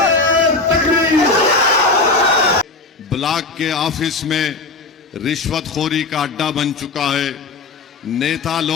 ब्लॉक के ऑफिस में रिश्वतखोरी का अड्डा बन चुका है। नेता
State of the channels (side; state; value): right; quieter; 3.7 dB